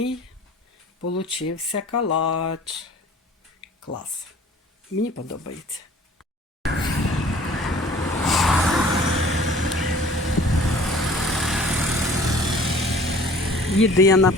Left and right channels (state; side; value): normal; both; correlation 0.50